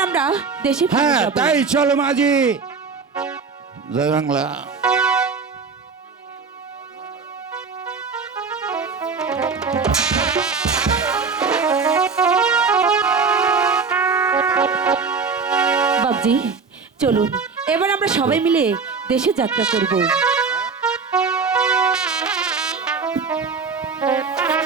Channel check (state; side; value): quieter; left; 5.0 dB